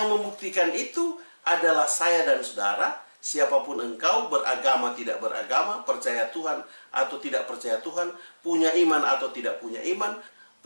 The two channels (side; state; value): both; inverted; correlation -1.00